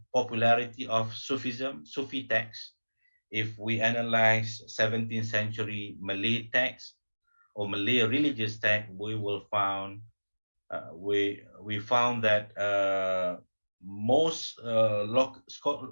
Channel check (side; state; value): both; inverted; correlation -1.00